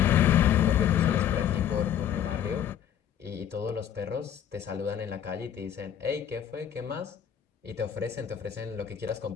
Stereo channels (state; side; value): quieter; right; 9.6 dB